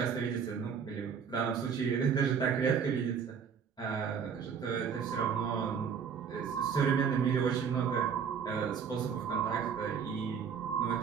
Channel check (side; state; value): left; quieter; 6.8 dB